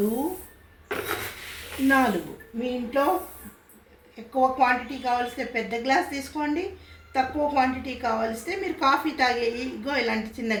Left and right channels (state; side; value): identical; both; correlation 1.00